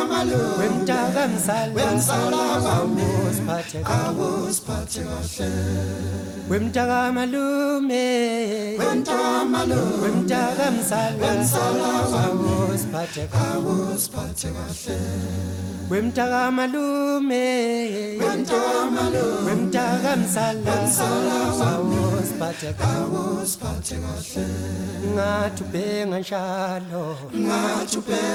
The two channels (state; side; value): identical; both; correlation 1.00